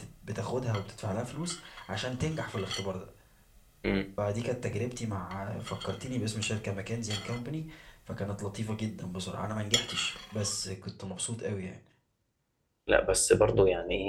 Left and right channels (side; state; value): both; identical; correlation 1.00